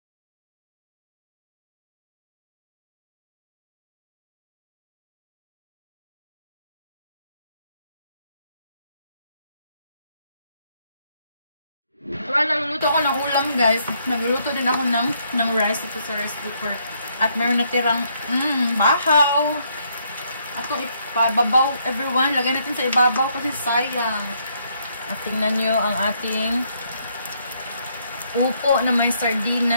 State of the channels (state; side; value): inverted; both; correlation -0.72